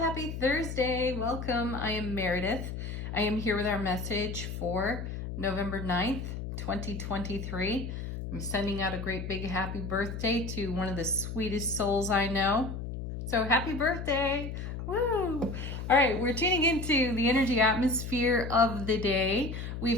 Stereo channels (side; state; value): left; noise; hum, 6 dB below the sound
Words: Thursday. Welcome. I am Meredith. I am here with our message for November 9th, 2023. I'm sending out a great big happy birthday to one of the sweetest souls I know. So happy birthday. Woo! All right, we're tuning into the energy atmosphere of the day.